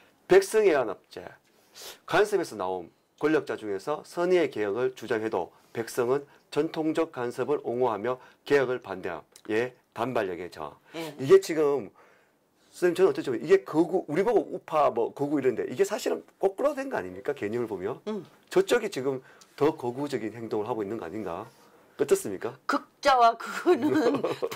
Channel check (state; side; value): identical; both; correlation 1.00